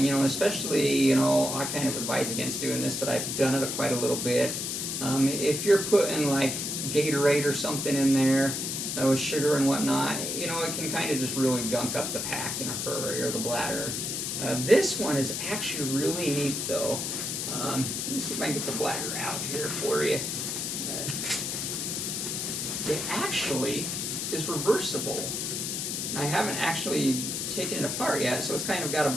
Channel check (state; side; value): noise; left; hiss, 2 dB below the sound